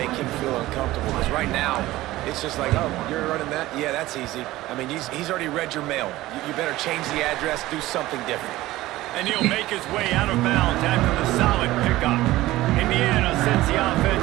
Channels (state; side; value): quieter; left; 17.0 dB